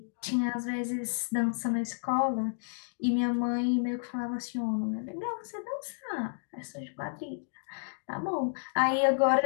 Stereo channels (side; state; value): right; silent; digital silence